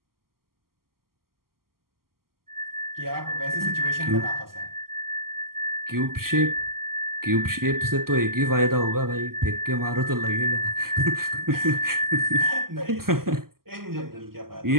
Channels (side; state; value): left; late; 0.92 ms